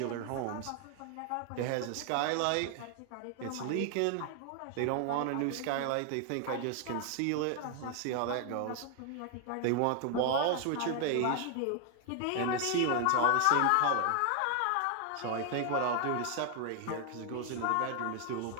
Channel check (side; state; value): both; different; correlation 0.00